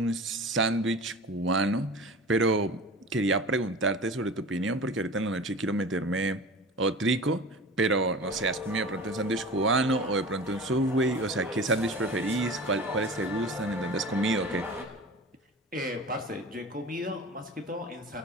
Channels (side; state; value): both; normal; correlation 0.36